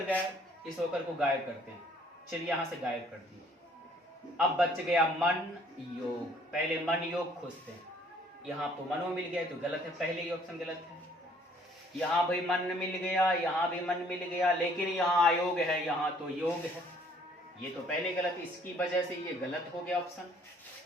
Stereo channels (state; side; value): normal; both; correlation 0.60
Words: गायब, इस ओकर को गायब करते हैं। चलिए यहां से गायब कर दिए। अब बच गया मन योग, पहले मन योग खोजते हैं। यहाँ तो मनो मिल गया तो गलत है, पहले ही ऑप्शन गलत है। यहाँ भी मन मिल गया, यहाँ भी मन मिल गया, लेकिन यहाँ अयोग है, यहाँ तो योग है, ये तो पहले गलत, इसकी वजह से ये गलत हो गया ऑप्शन।